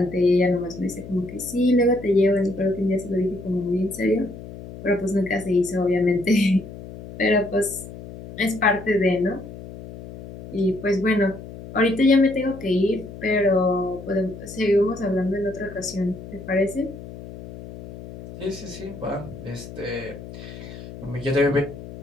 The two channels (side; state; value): left; noise; hum, 14 dB below the sound